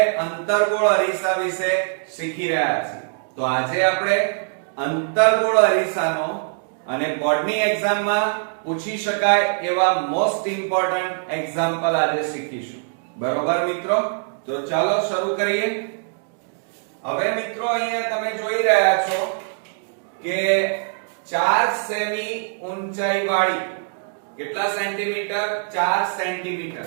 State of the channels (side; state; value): left; silent; digital silence